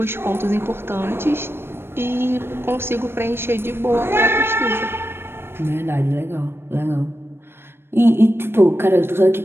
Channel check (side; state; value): left; late; 0.11 ms